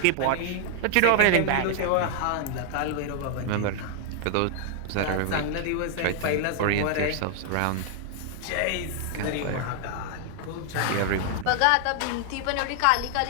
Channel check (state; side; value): different; both; correlation 0.00